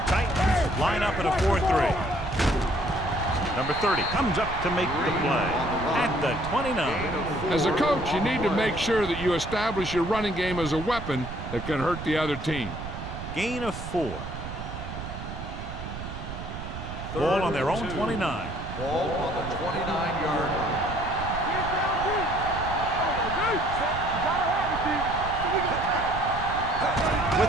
line up at a 4-3. Number 30 comes up to make the play at the 29. As a coach, you need to make sure that you establish your running game as a weapon that can hurt the other team. Gain of 4. Ball on their own 29. Ball on the 29-yard line.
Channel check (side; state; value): right; noise; rumble, 8 dB below the sound